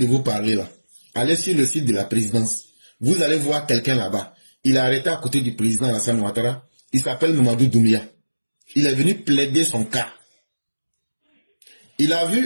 vous parler là. Allez sur le site de la présidence. Vous allez voir quelqu'un là-bas. Il est arrêté à côté du président Alassane Ouattara. Il s'appelle Mamadou Doumbia. Il est venu plaider son cas. Il a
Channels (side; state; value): both; inverted; correlation -1.00